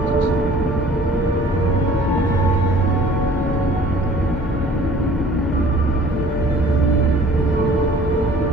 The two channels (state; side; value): normal; both; correlation 0.51